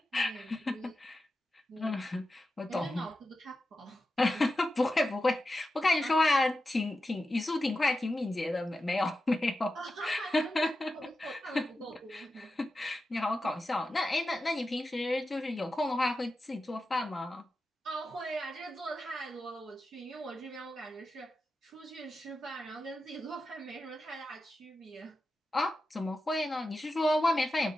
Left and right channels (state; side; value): normal; both; correlation 0.91